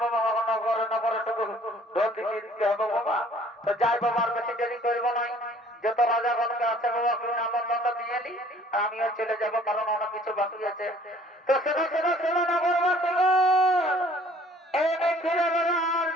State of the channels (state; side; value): normal; both; correlation 0.55